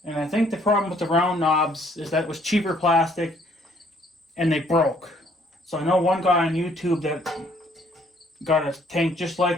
And I think the problem with the round knobs is that it was cheaper plastic and they broke. So I know one guy on YouTube that got a tank just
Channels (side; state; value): both; normal; correlation 0.64